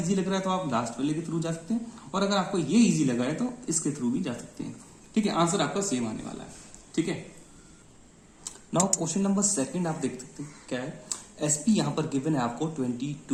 लग रहा है तो आप लास्ट वाले के थ्रू जा सकते हैं, और अगर आपको ये इजी लगा है तो इसके थ्रू भी जा सकते हैं, ठीक है। आंसर आपका सेम आने वाला है, ठीक है। नाउ क्वेश्चन नंबर 2 आप देख सकते हैं क्या है, एसपी यहां पर गिवन है आपको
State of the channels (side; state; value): both; identical; correlation 1.00